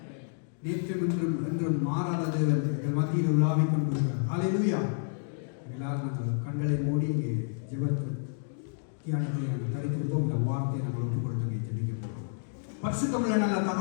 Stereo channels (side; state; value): right; silent; digital silence